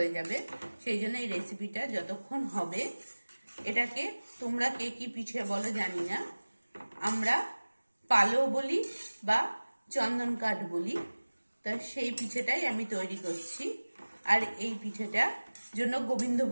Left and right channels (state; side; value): inverted; both; correlation -1.00